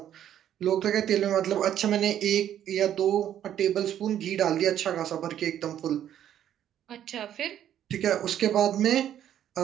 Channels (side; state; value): left; quieter; 10.7 dB